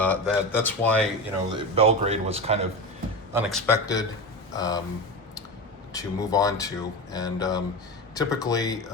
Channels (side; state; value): both; normal; correlation 0.23